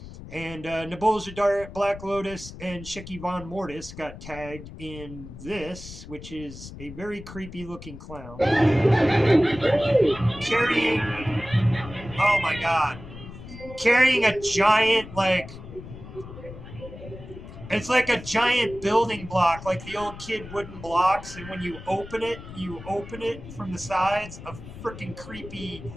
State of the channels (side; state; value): left; noise; rumble, 14 dB below the sound